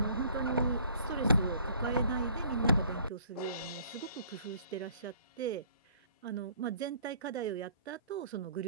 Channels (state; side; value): inverted; both; correlation -0.57